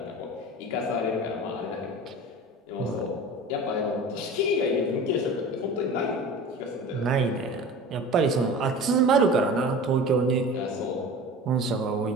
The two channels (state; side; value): normal; both; correlation 0.36